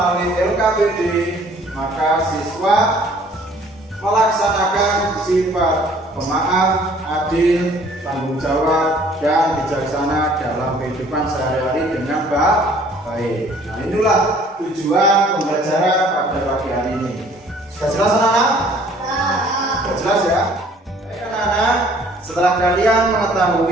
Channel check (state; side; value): normal; both; correlation 0.56